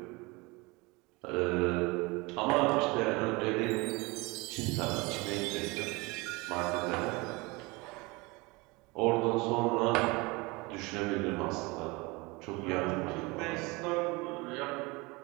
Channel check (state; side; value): quieter; left; 25.1 dB